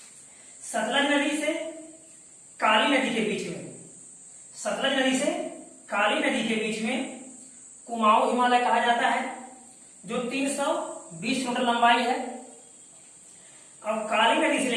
सतलज नदी से काली नदी के बीच में, सतलज नदी से काली नदी के बीच में कुमाऊं हिमालय कहा जाता है, जो 320 किलोमीटर लंबाई है। और काली नदी से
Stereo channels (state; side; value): identical; both; correlation 1.00